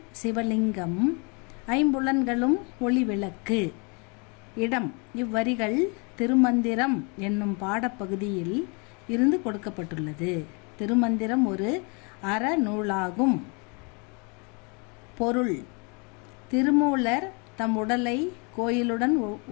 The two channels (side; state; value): right; quieter; 33.1 dB